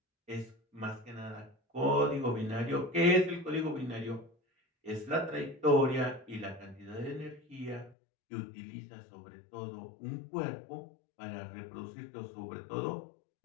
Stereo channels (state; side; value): drops out; right; at 8.0 s